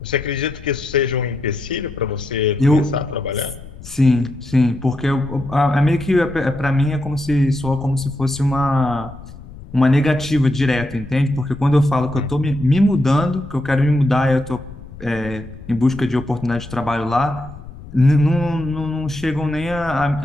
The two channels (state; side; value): noise; left; rumble, 16 dB below the sound